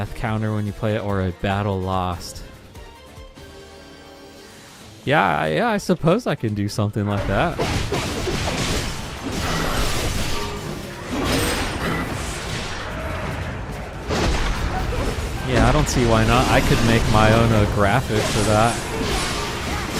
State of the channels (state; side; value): identical; both; correlation 1.00